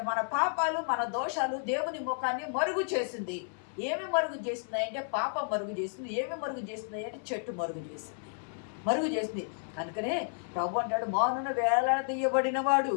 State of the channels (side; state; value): right; silent; 57 dB below the other